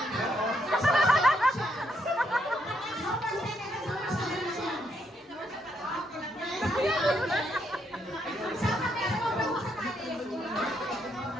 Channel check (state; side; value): normal; both; correlation 0.76